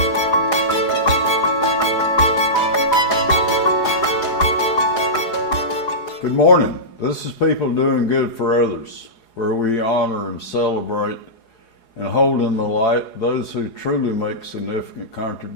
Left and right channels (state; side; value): late; right; 4.8 ms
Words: Good morning. This is People Doing Good for Others, where we honor and celebrate and hold in the light those who truly make significant